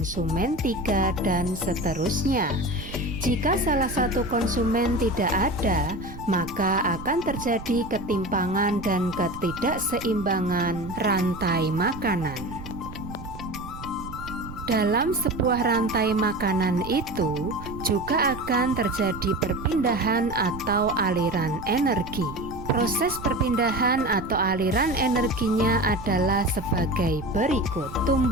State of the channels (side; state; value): right; noise; rumble, 13 dB below the sound